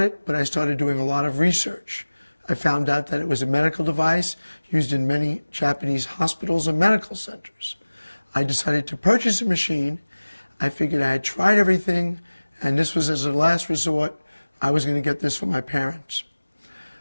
but I started doing a lot of research. I found out that it was a medical device used in many Japanese hospitals and medical centers. I decided to purchase a machine. I figured I had tried everything, and this was as a last resort. I was going to get this for my parents.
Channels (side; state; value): both; inverted; correlation -1.00